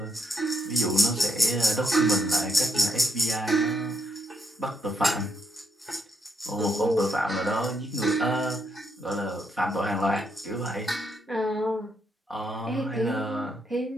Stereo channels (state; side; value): normal; both; correlation 0.77